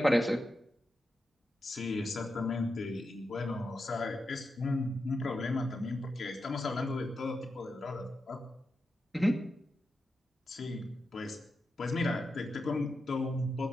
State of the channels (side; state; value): both; normal; correlation 0.88